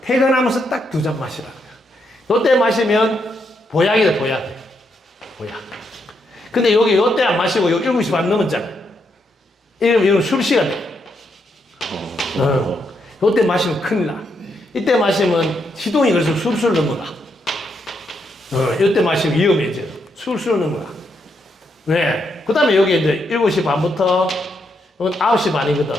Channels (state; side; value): normal; both; correlation 0.79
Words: 퇴근하면서 딱 2잔 마시라. 요때 마시면 보약이다, 보약. 보약. 근데 여기 요때 안 마시고 여기 7시 반 넘었잖아. 이러면 술시가 돼. 요때 마시면 큰일 나. 이때 마시면 시동이 그래서 술술 넘어가. 요때 마시면 위험해져. 술술 넘어가. 네. 그 다음에 여기 이제 7시 반부터 9시 반이거든.